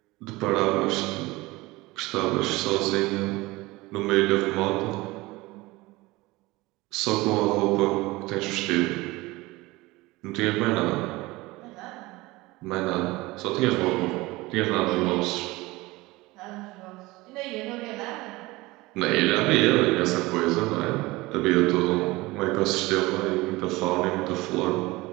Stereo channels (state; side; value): quieter; left; 20.9 dB